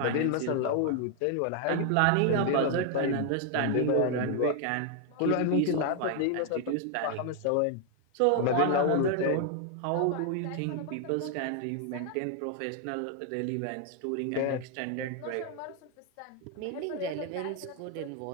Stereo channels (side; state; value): both; different; correlation 0.00